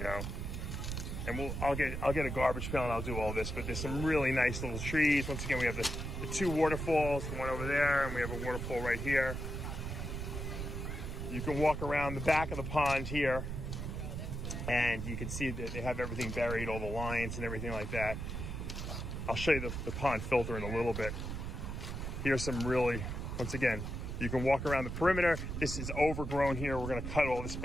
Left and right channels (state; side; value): noise; right; rumble, 4 dB below the sound